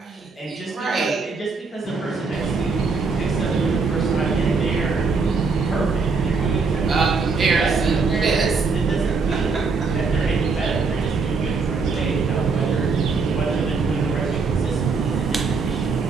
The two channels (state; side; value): quieter; left; 4.5 dB